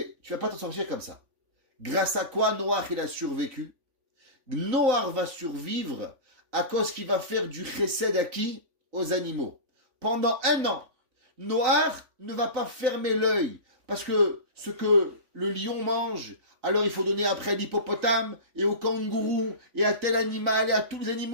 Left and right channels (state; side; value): late; left; 3.5 ms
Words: tu vas pas t'en sortir comme ça. Grâce à quoi Noach, il a survécu? Noach va survivre à cause qu'il va faire du chesed à qui? Aux animaux. Pendant 1 an, Noach ne va pas fermer l'œil parce que ce que le lion mange, alors il faut donner après à l'hippopotame et au kangourou et à tel animal et à tous les